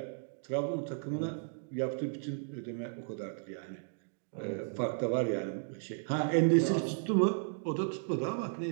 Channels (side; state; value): left; silent; digital silence